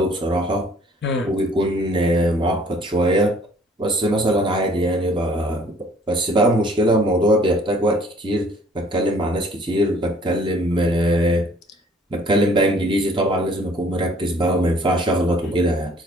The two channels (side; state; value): both; normal; correlation 0.57